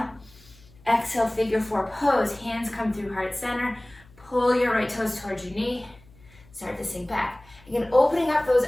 Exhale, figure four pose. Hands come through heart center. Pull your right toes towards your knee. Start to sink back. Again, opening up those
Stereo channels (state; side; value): noise; left; hum, 26 dB below the sound